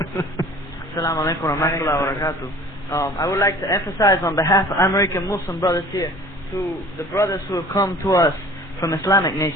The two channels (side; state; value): both; normal; correlation 0.47